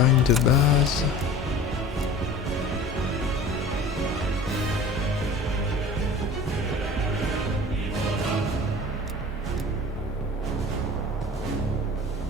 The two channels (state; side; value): normal; both; correlation 0.41